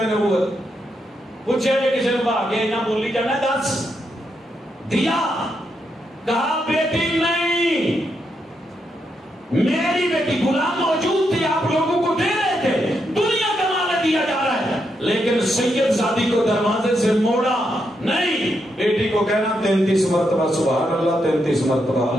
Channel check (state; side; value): normal; both; correlation 0.81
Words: نبوت. پوچھے کسی نے بھاگے نہ بولی جانا، دس دیا، کہا بیٹی نہیں، میری بیٹی. غلام موجود تھی، آپ لوگوں کو دے رہے تھے، دنیا کا مال دیا جا رہا ہے، لیکن سید زادی کو دروازے سے موڑا نہیں. بیٹی کو کہنا 33 مرتبہ سبحان اللہ، 33 مرتبہ